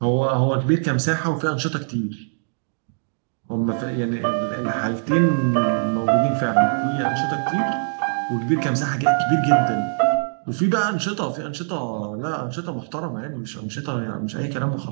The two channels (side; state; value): left; silent; digital silence